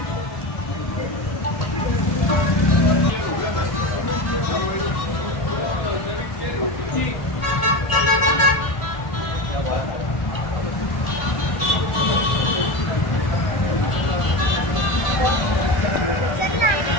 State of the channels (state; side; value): late; right; 1.5 ms